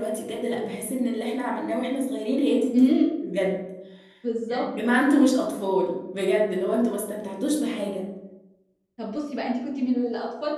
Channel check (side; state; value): both; identical; correlation 1.00